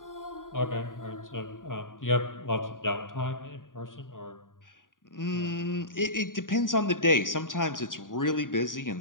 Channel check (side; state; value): right; late; 0.89 ms